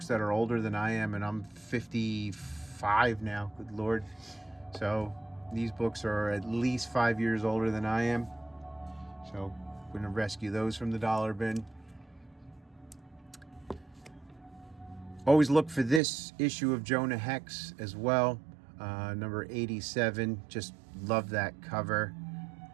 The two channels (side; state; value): left; drops out; at 16.0 s